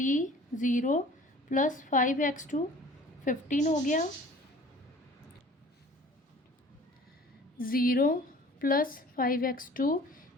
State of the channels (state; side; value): normal; both; correlation 0.48